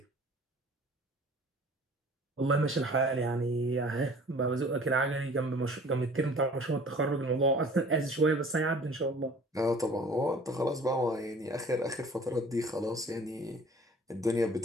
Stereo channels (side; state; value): both; normal; correlation 0.49